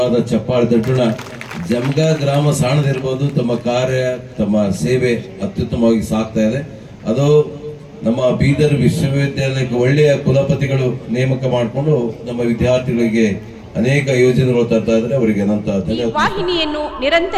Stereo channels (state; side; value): identical; both; correlation 1.00